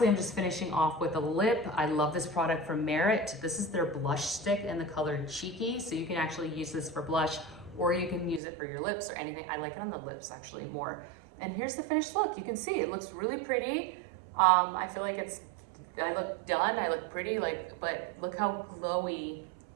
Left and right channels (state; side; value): drops out; left; at 8.4 s